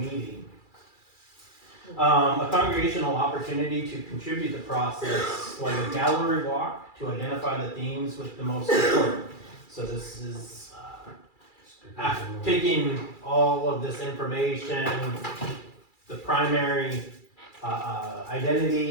A congregational opportunity to contribute to the process, like a gallery walk, to identify the themes with the most support. So this is after taking all of this information, the primary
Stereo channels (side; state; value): right; late; 2.3 ms